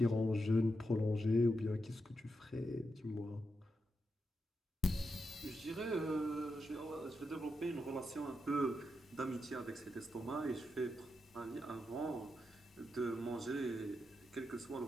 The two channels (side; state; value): both; normal; correlation 0.86